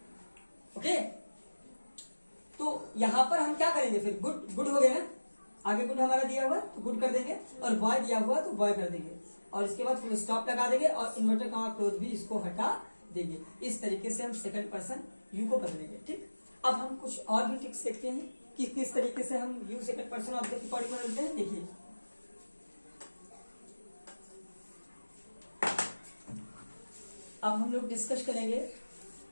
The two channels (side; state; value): both; inverted; correlation -1.00